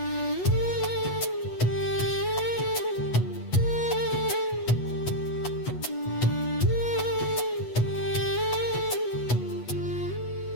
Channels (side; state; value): right; late; 8.2 ms